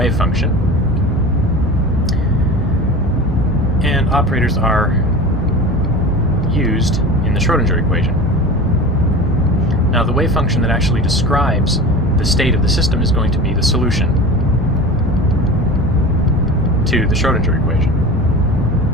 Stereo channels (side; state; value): both; normal; correlation 0.33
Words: function, and operators are used in the Schrödinger equation. Now the wave function that actually describes the state of the system is going to be the solution to the Schrödinger equation.